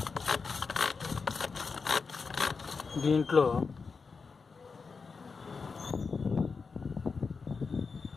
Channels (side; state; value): right; quieter; 4.9 dB